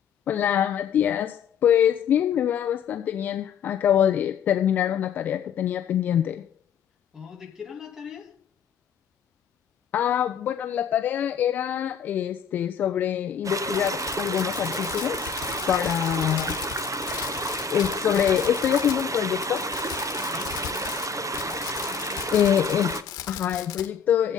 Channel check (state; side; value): quieter; right; 7.3 dB